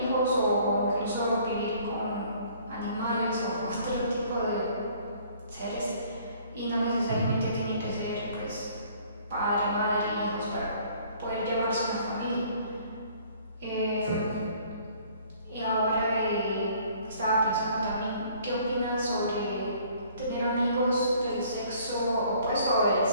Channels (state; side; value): inverted; both; correlation -0.57